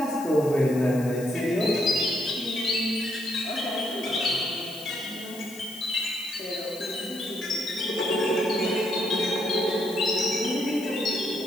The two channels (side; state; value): left; noise; hiss, 16 dB below the sound